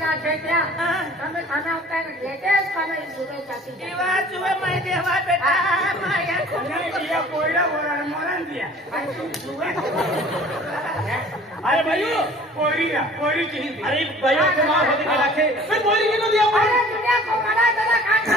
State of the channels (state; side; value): normal; both; correlation 0.49